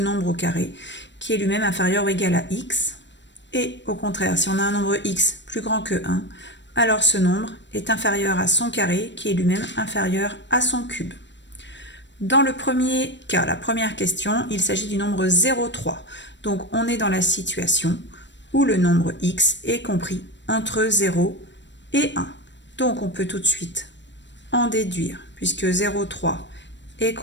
au carré, qui est lui-même inférieur ou égal à x. Et au contraire, si on a un nombre x plus grand que 1, alors ce nombre est inférieur à son carré, qui est lui-même inférieur à son cube. Dans le premier cas, la première question, il s'agit du nombre 0,3. Donc on est dans la situation où le nombre x est compris entre 0 et 1. Donc on peut tout de suite en déduire, puisque 0,3 est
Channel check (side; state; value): right; late; 0.53 ms